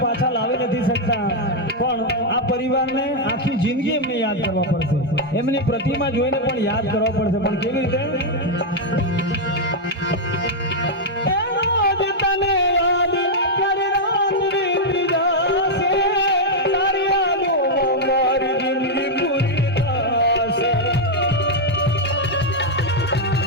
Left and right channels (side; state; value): both; normal; correlation -0.01